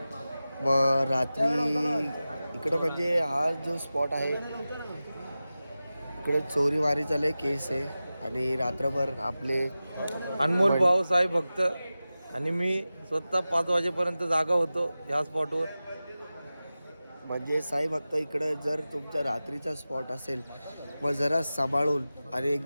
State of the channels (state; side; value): inverted; both; correlation -0.95